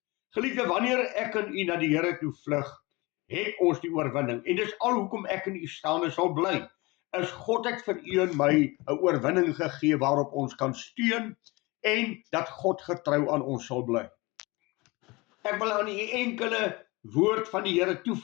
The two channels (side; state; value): right; quieter; 24.0 dB